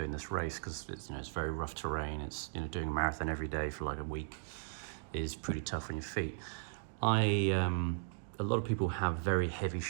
this race, because it's very rough terrain. It's doing a marathon every day for like a week is pretty tough on your feet. A lot of people have very heavy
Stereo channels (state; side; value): silent; left; digital silence